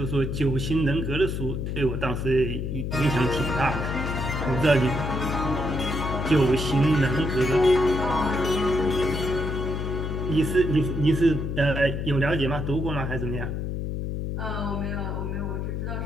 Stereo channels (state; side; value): noise; left; hum, 3 dB below the sound